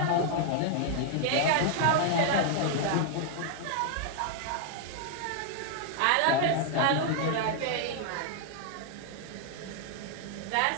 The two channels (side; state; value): both; different; correlation 0.00